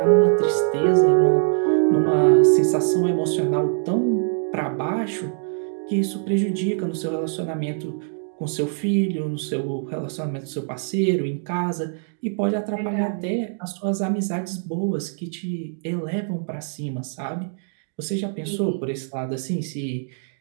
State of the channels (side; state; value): left; silent; digital silence